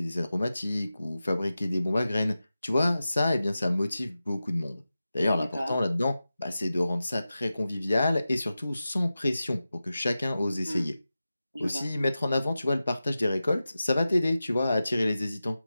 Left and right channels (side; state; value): both; inverted; correlation -0.94